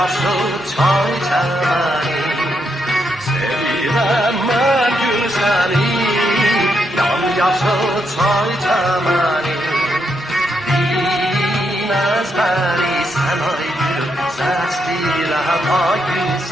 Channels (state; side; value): normal; both; correlation 0.80